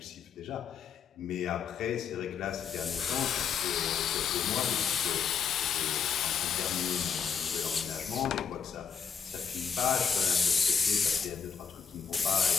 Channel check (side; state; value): right; quieter; 6.7 dB